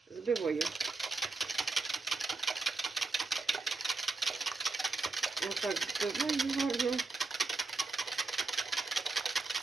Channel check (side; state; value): left; quieter; 3.7 dB